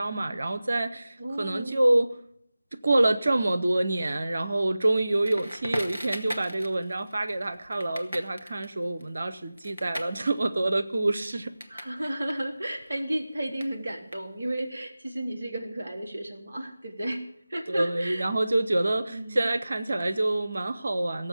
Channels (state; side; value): inverted; both; correlation -0.96